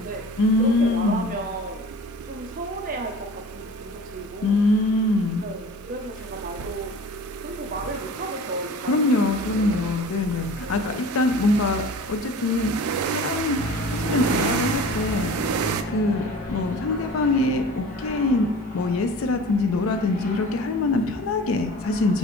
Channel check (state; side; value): normal; both; correlation 0.41